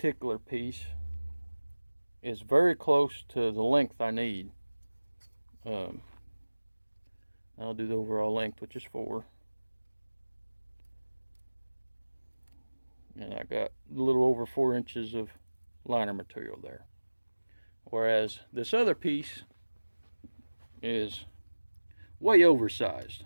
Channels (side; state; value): both; inverted; correlation -1.00